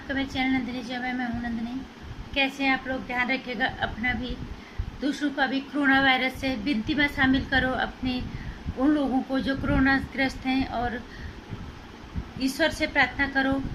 मेरे चैनल नंदिनी जी में। मैं हूँ नंदिनी। कैसे हैं आप लोग? ध्यान रखिएगा अपना भी, दूसरों का भी। कोरोना वायरस से विनती में शामिल करो अपने उन लोगों को जो कोरोना ग्रस्त हैं, और ईश्वर से प्रार्थना करो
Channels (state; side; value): identical; both; correlation 1.00